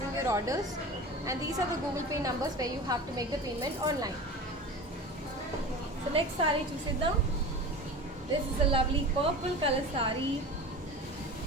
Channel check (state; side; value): normal; both; correlation 0.33